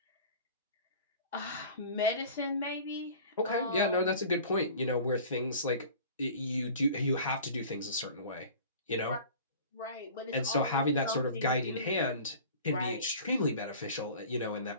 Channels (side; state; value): both; inverted; correlation -0.42